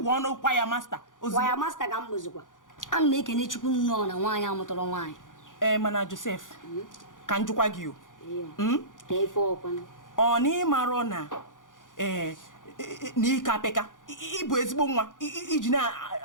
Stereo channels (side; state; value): right; late; 0.88 ms